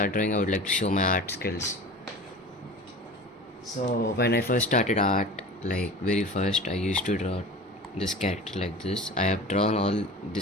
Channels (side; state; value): both; normal; correlation 0.36